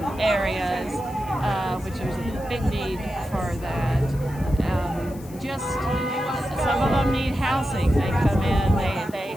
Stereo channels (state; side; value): noise; left; hiss, 21 dB below the sound